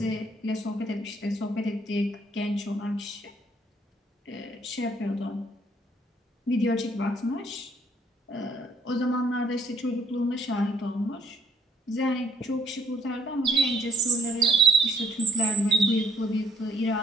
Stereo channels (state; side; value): normal; both; correlation 0.65